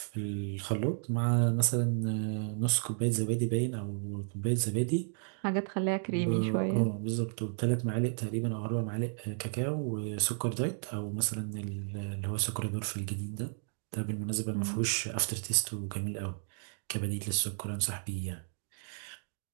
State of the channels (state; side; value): silent; left; digital silence